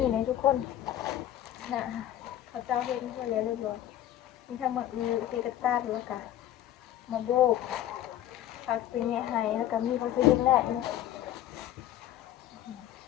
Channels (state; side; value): quieter; right; 12.4 dB